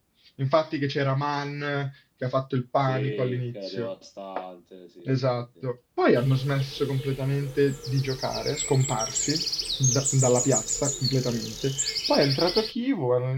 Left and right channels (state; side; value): identical; both; correlation 1.00